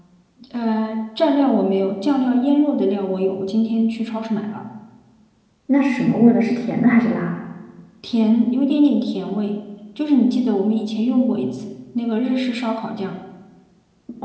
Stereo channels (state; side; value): identical; both; correlation 1.00